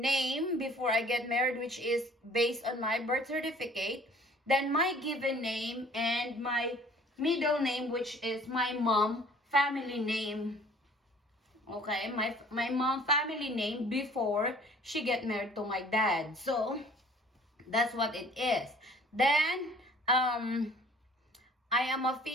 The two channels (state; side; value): normal; both; correlation 0.53